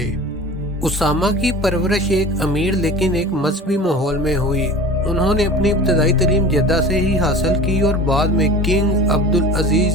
اسامہ کی پرورش ایک امیر لیکن ایک مذہبی ماحول میں ہوئی۔ انہوں نے اپنی ابتدائی تعلیم جدہ سے ہی حاصل کی اور بعد میں کنگ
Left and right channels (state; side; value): normal; both; correlation 0.38